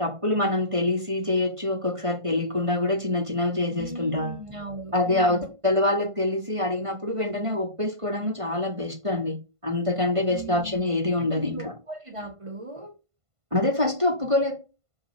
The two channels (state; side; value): late; left; 1.5 ms